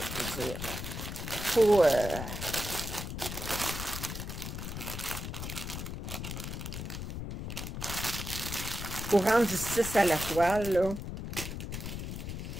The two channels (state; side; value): noise; left; rumble, 6 dB below the sound